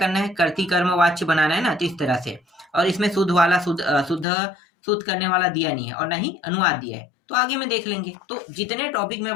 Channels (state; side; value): drops out; right; at 4.2 s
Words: है, कर्ती कर्म वाच्य बनाना है ना, तो इस तरह से। और इसमें शुद्ध वाला, शुद्ध करने वाला दिया नहीं है, और ना ही अनुवाद दिया है, तो आगे में देख लेंगे। तो जितने टॉपिक मैं